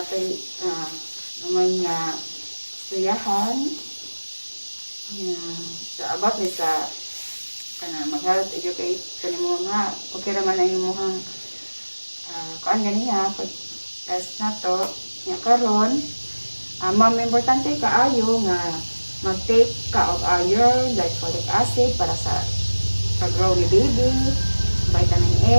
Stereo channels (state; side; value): inverted; both; correlation -1.00